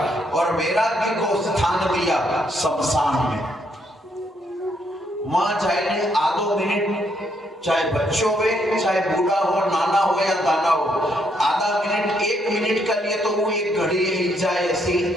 और वैराग्य को स्थान दिया शमशान में। वहां जाए आधो मिनट, चाहे बच्चों में, चाहे बूढ़ा हो, नाना हो या दाना हो, आधा मिनट 1 मिनट के लिए तो वो एक घड़ी ही जाए ऐसी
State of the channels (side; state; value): both; normal; correlation 0.73